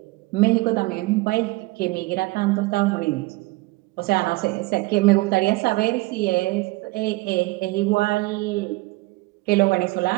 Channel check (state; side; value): quieter; left; 22.0 dB